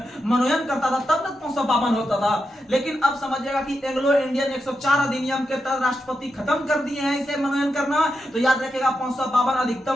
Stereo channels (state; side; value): normal; both; correlation 0.87